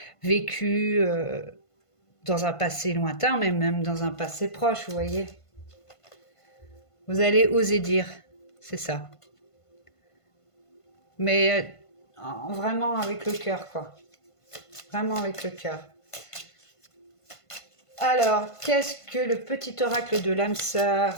vécu dans un passé lointain, mais même dans un passé proche, vous voyez. Vous allez oser dire, c'est ça. Mais vraiment avec le cœur, quoi. Vraiment avec le cœur. Alors, qu'est-ce que le petit oracle de l'âme sœur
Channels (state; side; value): late; right; 1.5 ms